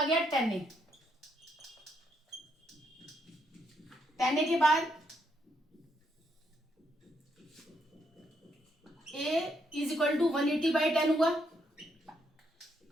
गया 10a। 10a के बाद a इज इक्वल टू 180/10 हुआ।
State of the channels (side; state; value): both; normal; correlation 0.76